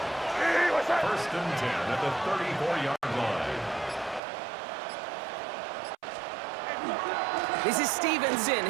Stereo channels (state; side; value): drops out; left; at 4.2 s